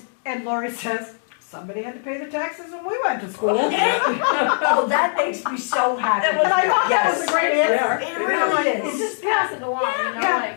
And Lori says, somebody had to pay the taxes when we went to school. Oh, that makes me so happy. And I thought that was a Yes, great answer. it And really I'm like, You is. just pass it along, you know, Yeah.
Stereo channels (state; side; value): silent; right; digital silence